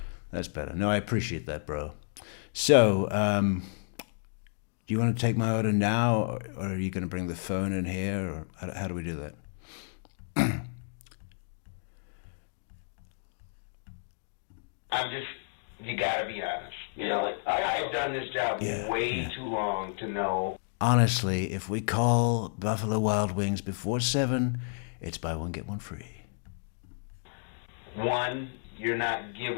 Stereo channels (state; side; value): silent; right; digital silence